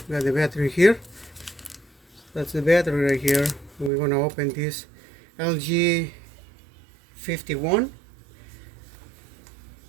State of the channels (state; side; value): drops out; left; at 3.9 s